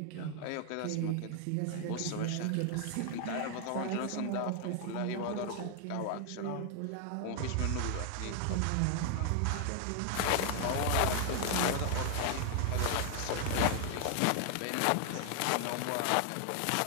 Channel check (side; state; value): both; different; correlation 0.00